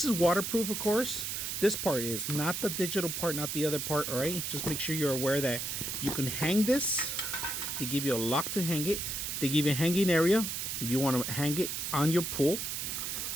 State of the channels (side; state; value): right; noise; hiss, 3 dB below the sound